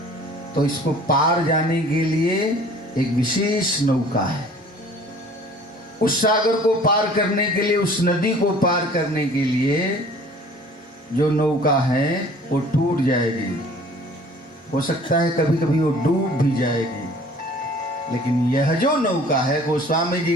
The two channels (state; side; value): normal; both; correlation 0.50